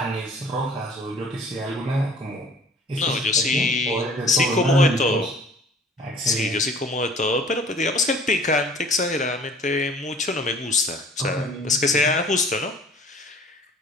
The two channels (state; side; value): normal; both; correlation 0.51